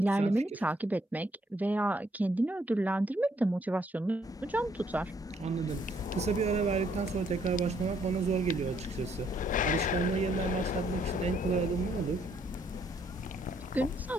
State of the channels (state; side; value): normal; both; correlation 0.69